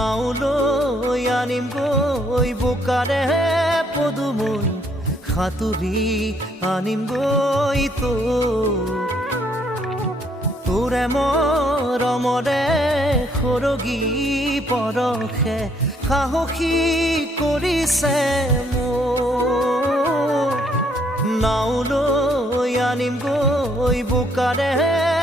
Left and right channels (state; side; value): normal; both; correlation 0.68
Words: আনিম গৈ বোকাৰে পদুমৈ সাঁতুৰি আনিম গৈ তোৰে মৰমৰে সৰগী পৰশে সাহসী কৰিছে মোক নাওলৈ আনিম গৈ বোকাৰে